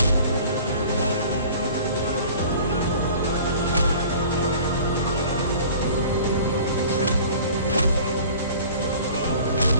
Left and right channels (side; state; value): both; inverted; correlation -0.45